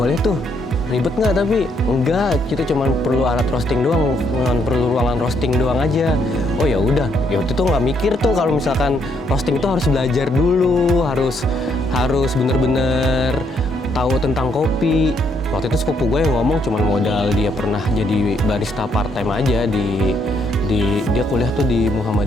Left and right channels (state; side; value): normal; both; correlation 0.73